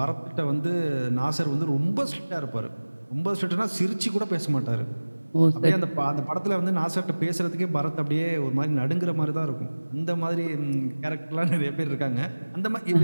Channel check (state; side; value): inverted; both; correlation -1.00